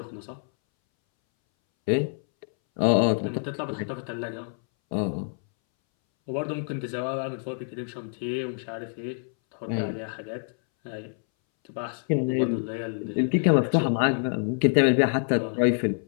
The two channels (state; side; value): silent; right; 60 dB below the other